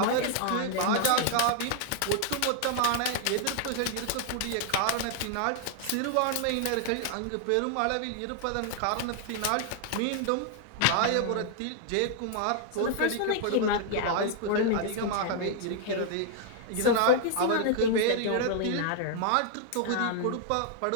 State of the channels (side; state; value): both; different; correlation 0.00